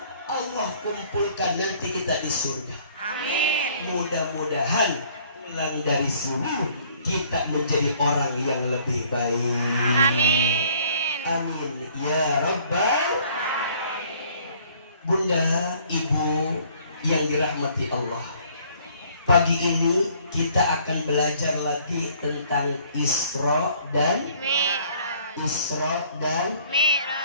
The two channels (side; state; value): both; inverted; correlation -0.58